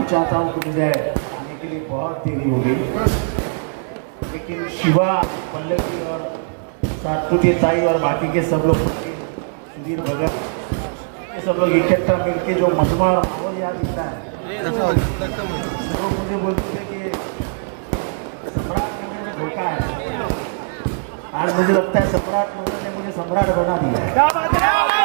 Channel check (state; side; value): silent; left; digital silence